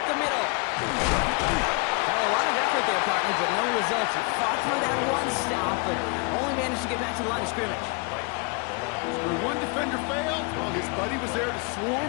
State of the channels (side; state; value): right; quieter; 32.1 dB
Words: the middle. Well, a lot of effort there, partner, but no results. He fought through that one stop, but only managed to get back to the line of scrimmage. When one defender failed, well, his buddy was there to